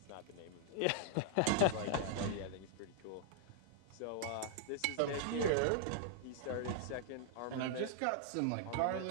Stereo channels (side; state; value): both; different; correlation -0.01